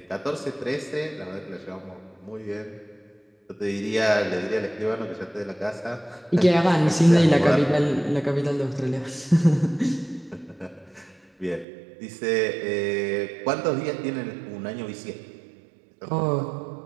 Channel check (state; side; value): drops out; left; at 11.7 s